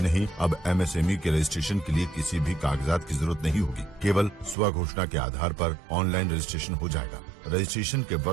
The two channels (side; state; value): left; drops out; at 4.5 s